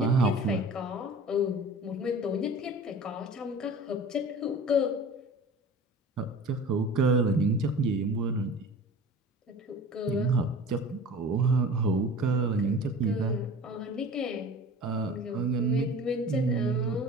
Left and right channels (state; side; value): normal; both; correlation 0.40